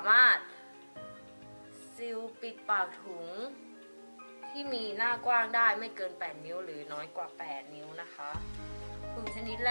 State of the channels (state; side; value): inverted; both; correlation -1.00